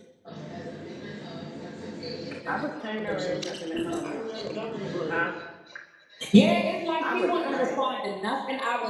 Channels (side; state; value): both; identical; correlation 1.00